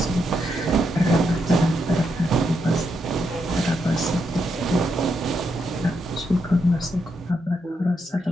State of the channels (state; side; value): normal; both; correlation 0.81